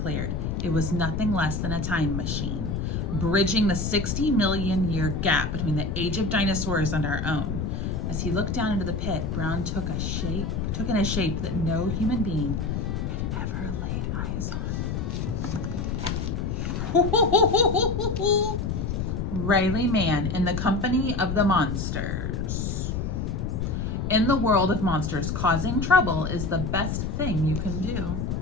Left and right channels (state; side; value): noise; left; rumble, 2 dB below the sound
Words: It was nothing less than a time machine, bridging the 60 million year gap between the age of dinosaurs and our own. As he looked down into the pit, Brown took in a shape that no human being had ever laid eyes on. Riley Mann in the company of the monsters. In the world of monsters, causing trouble is the best thing you can do.